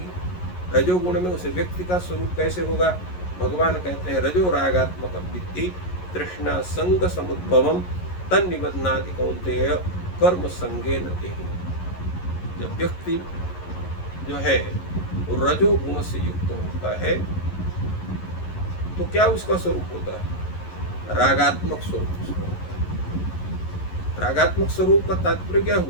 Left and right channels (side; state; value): right; late; 11 ms